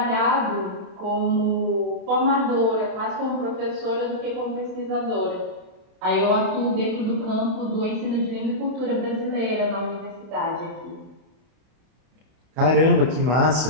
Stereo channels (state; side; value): late; left; 31 ms